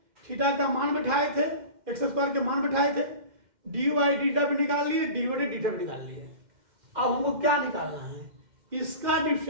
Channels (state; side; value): late; left; 2.1 ms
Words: थीटा का मान बैठाए थे, एक्स स्क्वायर के मान बैठाए थे, डी वाई डीटा भी निकाल लिए, डी बटे डीटा भी निकाल लिए। अब हमको क्या निकालना है? इसका